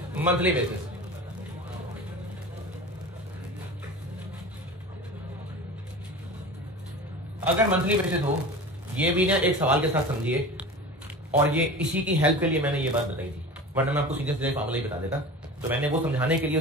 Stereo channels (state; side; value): normal; both; correlation 0.34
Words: monthly basis. अगर मंथली बेसिस हो, ये भी ना एक सवाल के साथ समझिए, और ये इसी की हेल्प के लिए मैंने ये बात बताई थी, वरना मैं आपको सीधे सीधे फार्मूला ही बता देता। तो मैंने वो समझाने के लिए,